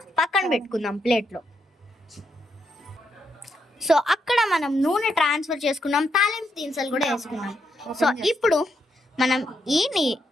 పక్కన పెట్టుకుందాం ప్లేట్లో. సో అక్కడ మనం నూనె ట్రాన్స్ఫర్ చేసుకున్నాం, తాలింపు దినుసులు కూడా వేసుకున్నాం. సో ఇప్పుడు మనం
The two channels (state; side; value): normal; both; correlation 0.80